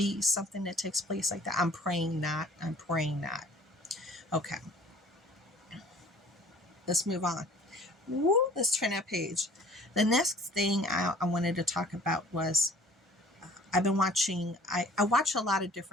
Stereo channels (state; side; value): normal; both; correlation 0.50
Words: something that takes place like that? I'm praying not. I'm praying not. Okay. Let's move on. Woo, let's turn that page. The next thing I wanted to talk about was I've been watching, I watch a lot of